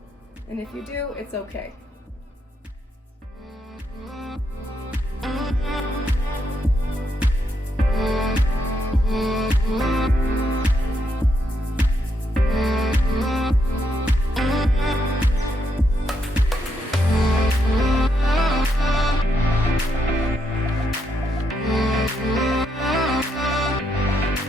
And if you do, it's okay.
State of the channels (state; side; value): normal; both; correlation 0.79